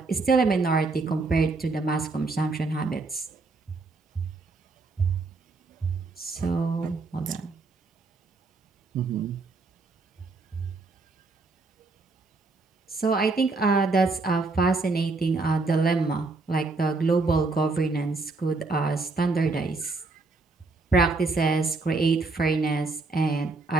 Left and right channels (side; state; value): left; quieter; 3.7 dB